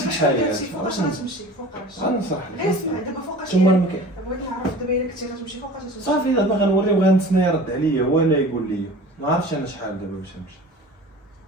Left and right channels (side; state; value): both; normal; correlation 0.41